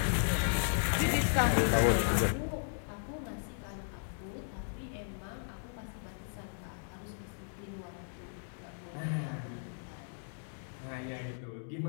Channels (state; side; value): silent; right; digital silence